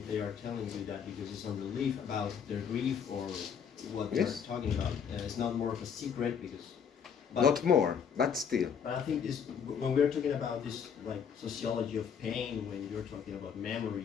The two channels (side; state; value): right; quieter; 7.2 dB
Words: they are telling you that because it's a relief about their grief or what Yes. they're talking about. It's not more of a secret because. Not more, but still. But I think this, when we're talking about this, like sociology of pain, when you're talking about